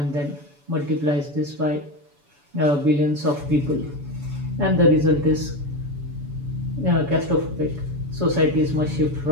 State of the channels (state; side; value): late; left; 7.0 ms